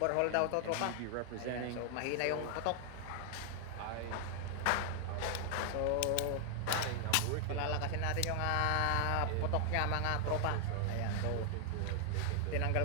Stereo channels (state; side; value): different; both; correlation 0.00